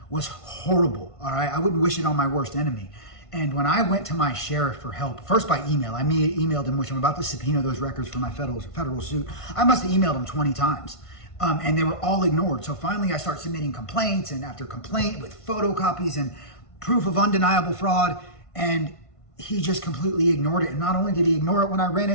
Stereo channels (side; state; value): right; late; 1.5 ms